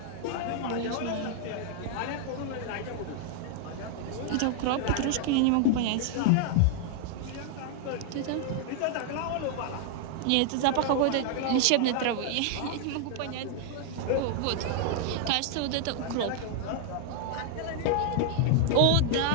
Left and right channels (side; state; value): both; different; correlation 0.00